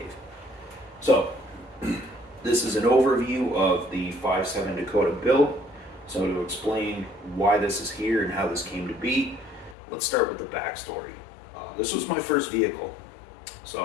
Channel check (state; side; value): drops out; right; at 9.8 s